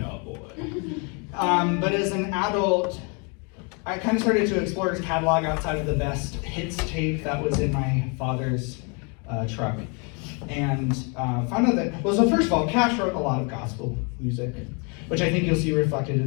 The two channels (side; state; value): right; quieter; 34.2 dB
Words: But as an adult, I kind of started to explore his catalog outside of the best hits tape that was in my father's truck. And found out that, well, so first of all, Cash wrote a lot of gospel music, which I think you'll see reflected